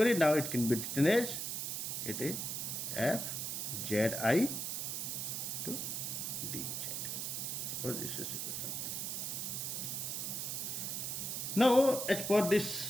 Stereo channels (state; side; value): noise; right; hiss, 2 dB below the sound